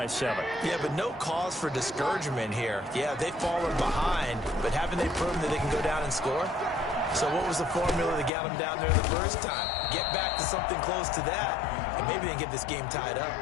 7. Yeah, but no cause for discouragement here. Yeah, they've fallen behind, but haven't they proven that they can go down and score? So what was the formula that got them down there the first time? Get back to something close to that, and maybe they can get this game tied up.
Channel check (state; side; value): drops out; right; at 8.3 s